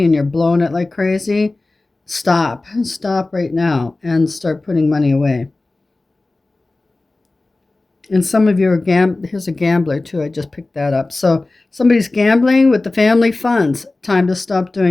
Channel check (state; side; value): quieter; right; 3.1 dB